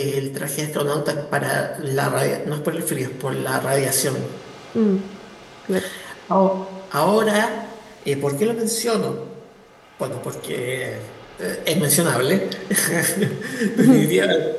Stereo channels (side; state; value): both; identical; correlation 1.00